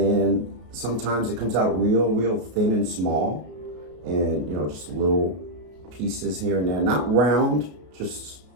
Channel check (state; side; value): late; left; 33 ms